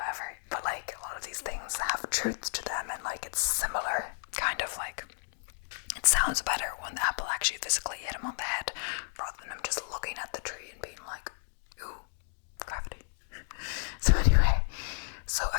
but a lot of these things have truths to them, and it's similar, kind of it sounds better when the apple actually physically hit him on the head rather than him just looking at the tree and being like, ooh, gravity. So anyway,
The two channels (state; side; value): silent; right; digital silence